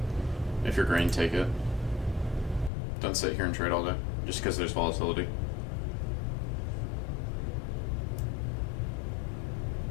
If you're green, take it. Don't sit here and trade all day, just because there's volatility.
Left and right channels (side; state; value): right; drops out; at 2.7 s